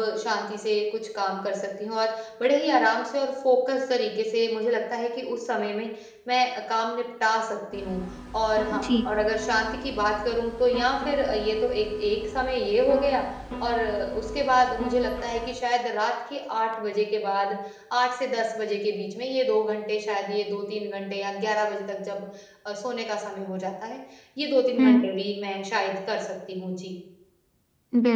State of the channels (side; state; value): both; identical; correlation 1.00